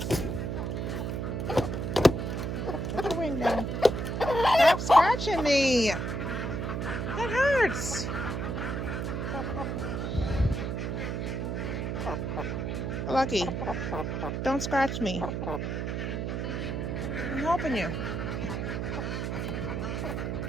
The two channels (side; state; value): right; noise; hum, 2 dB below the sound